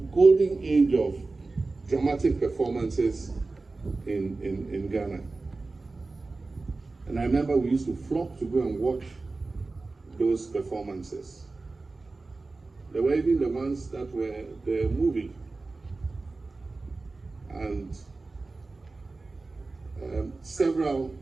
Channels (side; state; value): left; quieter; 3.6 dB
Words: golden age of dramatic performances in Ghana. And I remember we used to flock to go and watch those performances. There were even the ones that were the movie. And several,